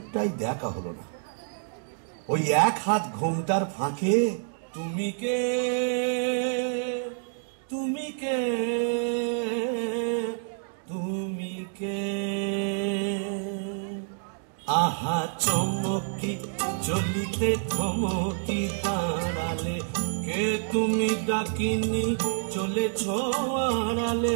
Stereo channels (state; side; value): silent; left; digital silence